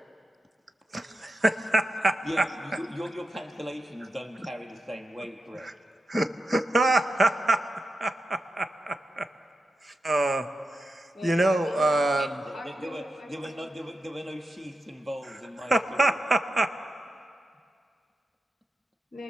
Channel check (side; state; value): both; normal; correlation 0.89